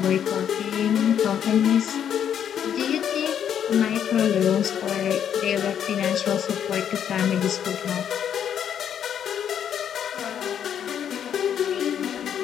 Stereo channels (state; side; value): quieter; right; 9.0 dB